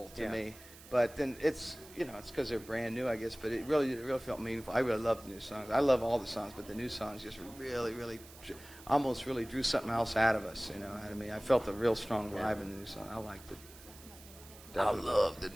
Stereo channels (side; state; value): right; noise; hiss, 19 dB below the sound